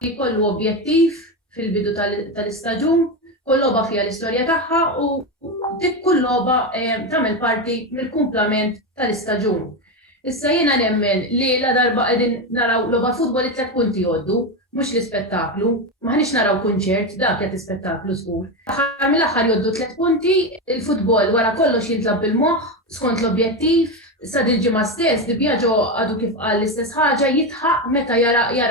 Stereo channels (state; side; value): normal; both; correlation 0.14